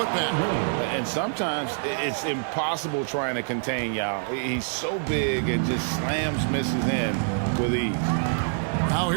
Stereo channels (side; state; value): left; silent; digital silence